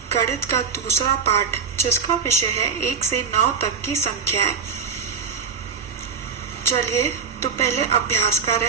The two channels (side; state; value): left; quieter; 6.1 dB